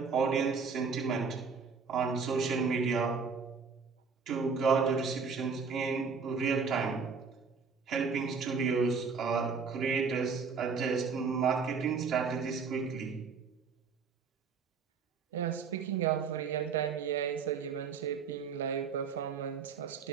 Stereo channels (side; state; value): left; quieter; 5.4 dB